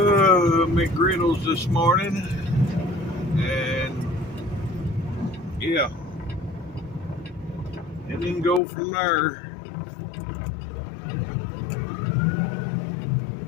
this morning, and yeah, and then go from there.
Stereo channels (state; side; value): drops out; right; at 8.6 s